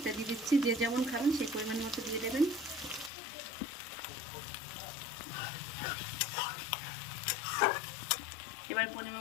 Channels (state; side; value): drops out; right; at 3.1 s